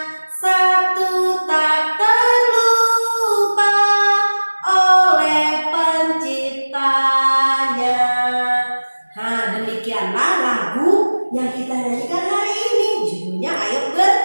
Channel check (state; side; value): inverted; both; correlation -1.00